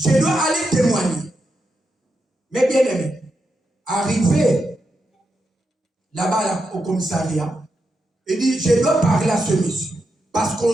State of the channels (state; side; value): normal; both; correlation 0.85